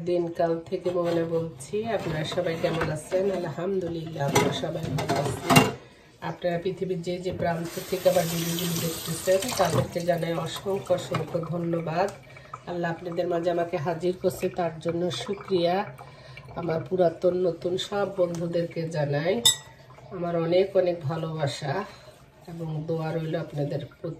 দিনকাল থেকে মোমেনা বলছি। আপনারা সবাই কেমন আছেন? আলহামদুলিল্লাহ আমরা সবাই ভালো আছি। আপনারা পৃথিবীর যে যে প্রান্ত থেকে আবার ভিডিওগুলি দেখতেছেন তাদেরকে জানাই অসংখ্য অসংখ্য ধন্যবাদ। আল্লাহ আপনাদের মাঝে আমাকে হাজির করছে, তার জন্য শুকরিয়া। আমার পুরাতন নতুন সব বন্ধুদেরকে জানাই আমার অনেক অনেক ভালোবাসা এবং দোয়া রইল আপনাদের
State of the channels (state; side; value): identical; both; correlation 1.00